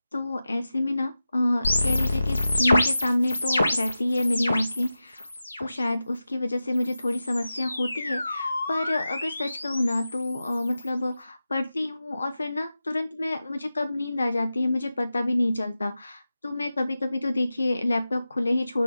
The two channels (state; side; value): inverted; both; correlation -0.93